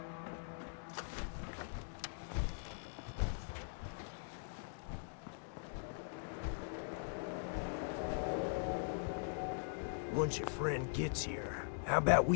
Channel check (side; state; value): right; silent; digital silence